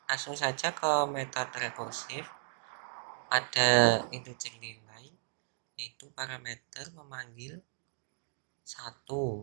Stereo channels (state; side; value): silent; left; digital silence